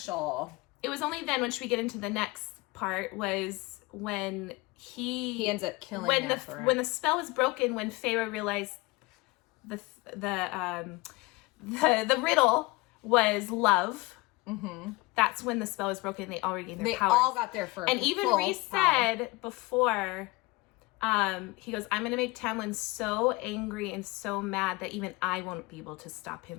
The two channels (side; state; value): right; quieter; 23.1 dB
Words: It was only then, once we get into the next part, was when he ends up killing when the spell was broken, when Feyre realized the riddle was love. Mm-hmm. That's when the spell was broken. They already gained their They powers. all got their first. And even Rhys said before, he goes, I'm going to make Tamlin so angry and so mad that even I won't be able to stop him